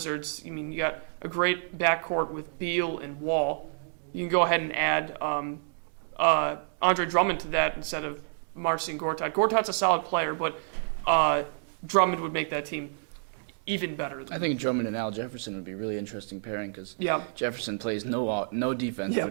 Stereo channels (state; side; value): silent; left; digital silence